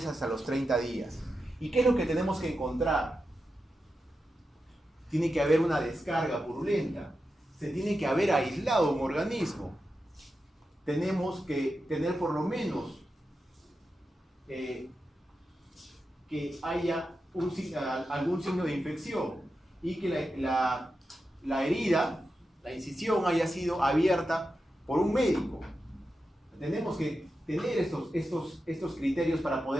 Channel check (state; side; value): normal; both; correlation 0.89